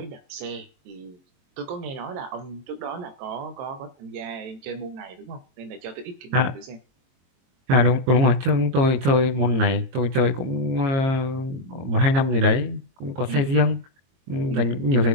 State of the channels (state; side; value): late; left; 22 ms